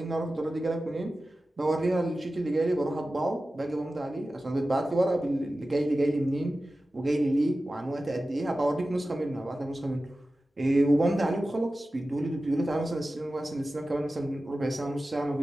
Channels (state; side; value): normal; both; correlation 0.95